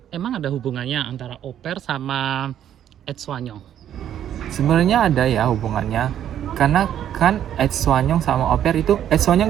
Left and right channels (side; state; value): left; quieter; 10.5 dB